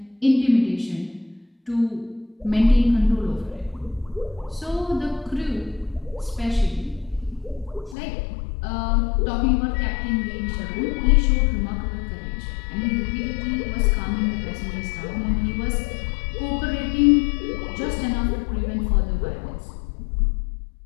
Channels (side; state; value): right; drops out; at 8.0 s